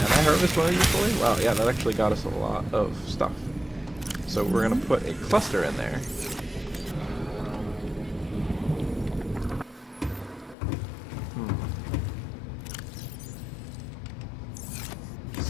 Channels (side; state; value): right; drops out; at 10.6 s